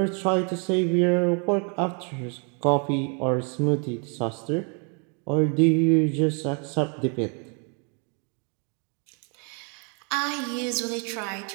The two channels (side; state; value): left; quieter; 37.5 dB